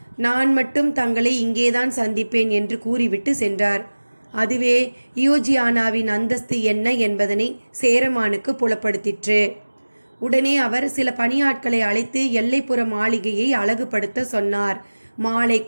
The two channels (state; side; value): inverted; both; correlation -1.00